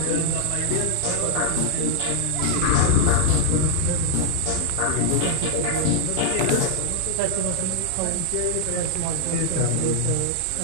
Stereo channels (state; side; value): different; both; correlation -0.01